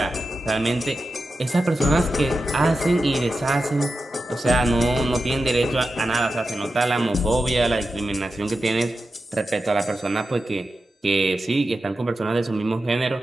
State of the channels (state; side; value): normal; both; correlation 0.91